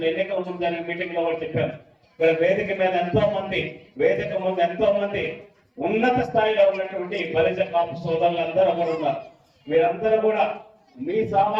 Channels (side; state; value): both; identical; correlation 1.00